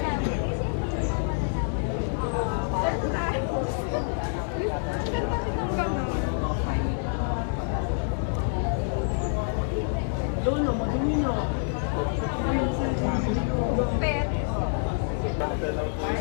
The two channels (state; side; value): silent; right; digital silence